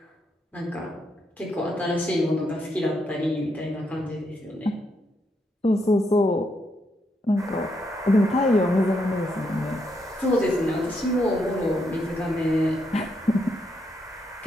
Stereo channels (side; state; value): both; normal; correlation 0.79